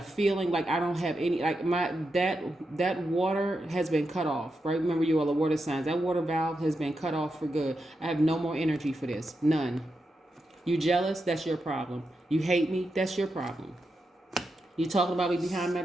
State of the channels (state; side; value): normal; both; correlation 0.87